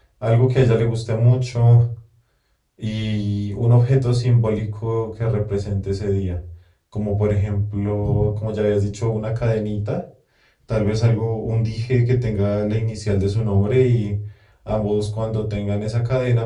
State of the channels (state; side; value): identical; both; correlation 1.00